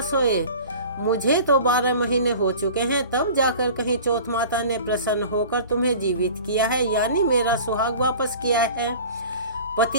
सोए? मुझे तो 12 महीने हो चुके हैं, तब जाकर कहीं चौथ माता ने प्रसन्न होकर तुम्हें जीवित किया है, यानी मेरा सुहाग वापस किया है।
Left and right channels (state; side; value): inverted; both; correlation -0.41